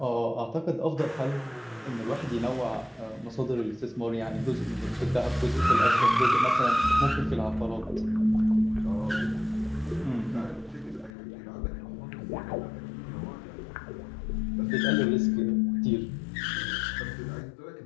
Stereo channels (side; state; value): right; drops out; at 11.2 s